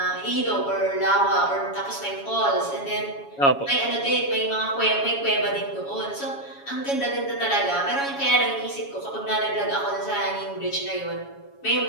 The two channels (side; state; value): right; late; 7.2 ms